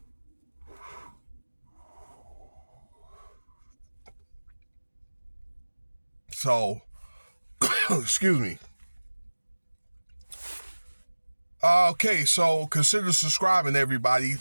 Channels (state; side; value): inverted; both; correlation -1.00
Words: So, excuse me. Okay, so consider subscribing, everybody.